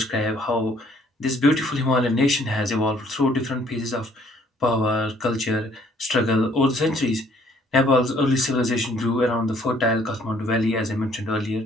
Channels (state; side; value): normal; both; correlation 0.62